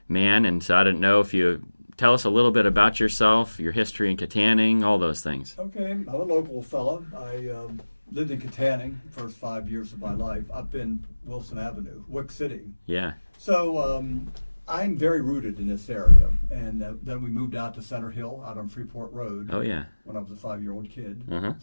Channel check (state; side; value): inverted; both; correlation -1.00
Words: man. And so I didn't know if you tell us a little bit about yourself, your history in Kittanning, all those things. Okay, I'm a local fella. I lived in Kittanning the first 5 years of my life up in Wilson Avenue, Wick City. Yeah. So I'm very rooted in this area, and then we moved out to Center Hill, out on Freeport Road. Oh yeah. When I was a 5-year-old kid. Uh-huh.